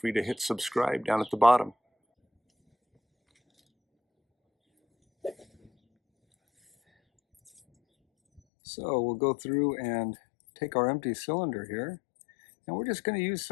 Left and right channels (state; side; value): drops out; right; at 8.4 s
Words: to hit subscribe down at the bottom. So we'll go through and take our empty cylinder here, and we're just going to use